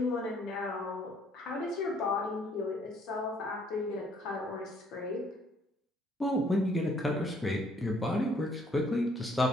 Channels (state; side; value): normal; both; correlation 0.64